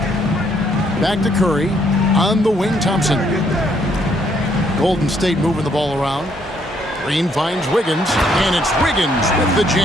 Back to Curry. On the wing, Thompson. Golden State moving the ball around. Green finds Wiggins, and it's Wiggins with the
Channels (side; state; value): both; normal; correlation 0.70